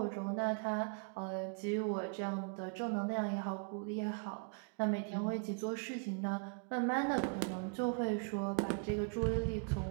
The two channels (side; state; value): left; quieter; 39.5 dB